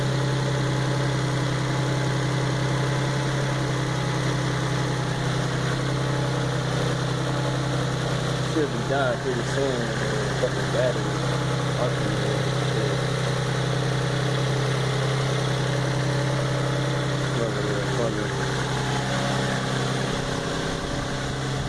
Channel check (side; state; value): both; identical; correlation 1.00